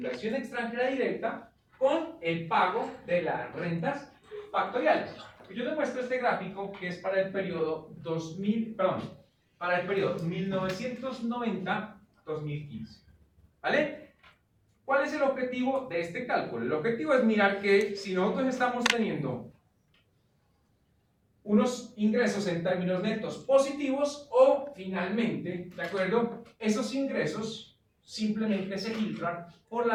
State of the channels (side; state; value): both; identical; correlation 1.00